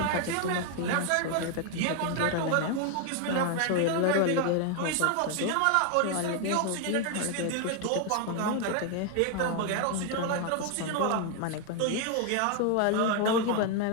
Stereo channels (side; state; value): both; different; correlation 0.01